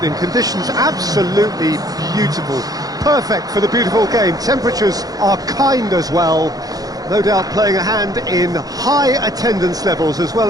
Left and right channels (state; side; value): late; left; 0.18 ms